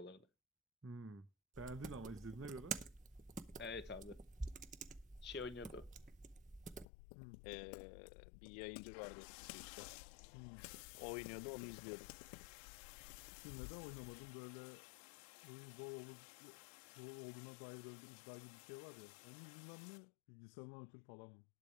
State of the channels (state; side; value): drops out; right; at 6.9 s